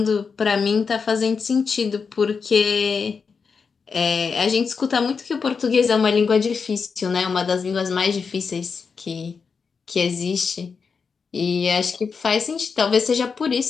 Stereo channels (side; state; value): right; quieter; 5.5 dB